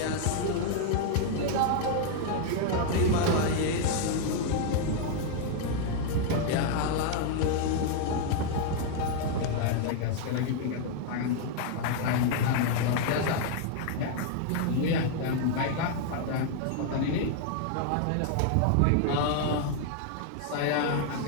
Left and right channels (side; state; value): both; different; correlation 0.00